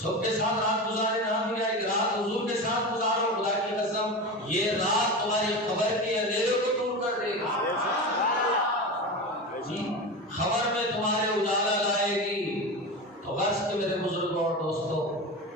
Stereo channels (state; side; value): normal; both; correlation 0.24